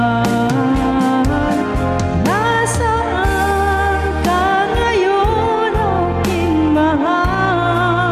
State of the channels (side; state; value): both; identical; correlation 1.00